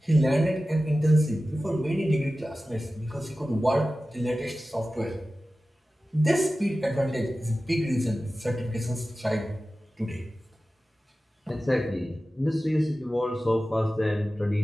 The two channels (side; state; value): both; normal; correlation 0.95